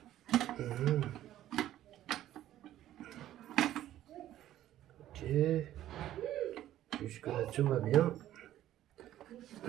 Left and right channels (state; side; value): quieter; left; 12.9 dB